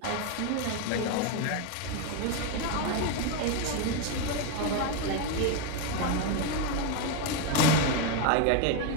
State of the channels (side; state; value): both; different; correlation 0.02